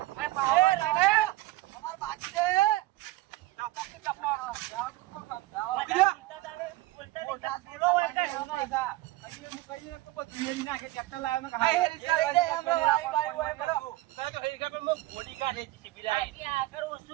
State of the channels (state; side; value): quieter; left; 18.4 dB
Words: અમાર બાકી છે